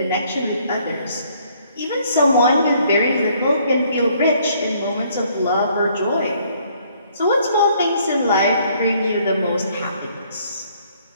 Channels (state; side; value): inverted; both; correlation -0.64